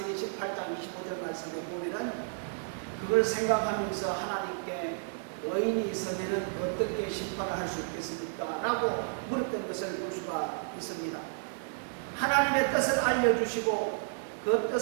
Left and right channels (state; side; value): silent; left; digital silence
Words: 18장 25절 말씀을 보면은 그걸 생각하면서 하나님께 의인이 있으면 어떻게 심판을 할 수 있겠습니까? 라고 물었던 것을 볼 수가 있습니다. 하나님의 뜻을 알려주시고 그